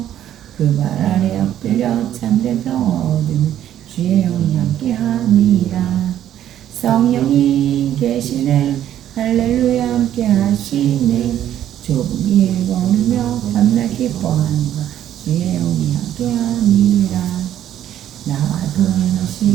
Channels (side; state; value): left; quieter; 11.3 dB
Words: 그 발 아래 엎드려 참된 평화 얻으면 주의 영이 함께함이라 성령이 계시네 할렐루야 함께하시네 좁은 길 걸으며 밤낮 기뻐하는 것 주의 영이 함께함이라 나와